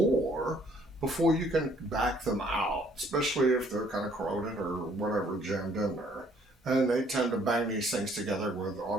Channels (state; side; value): normal; both; correlation 0.62